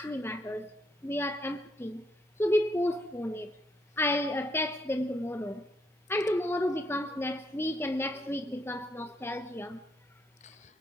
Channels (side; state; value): both; normal; correlation 0.74